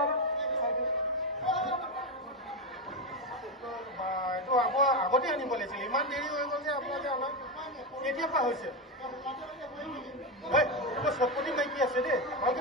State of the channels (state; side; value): normal; both; correlation 0.11